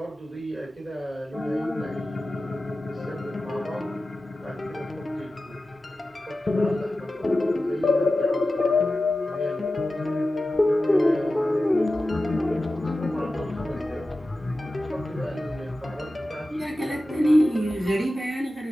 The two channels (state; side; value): normal; both; correlation 0.94